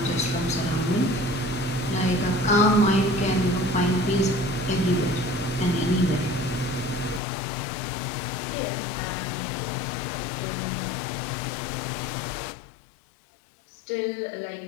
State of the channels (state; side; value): drops out; right; at 7.2 s